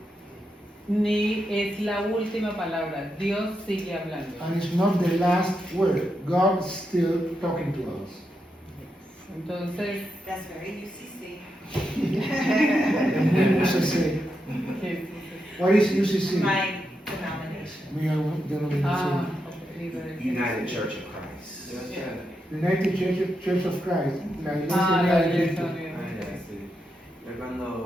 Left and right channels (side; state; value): both; normal; correlation 0.85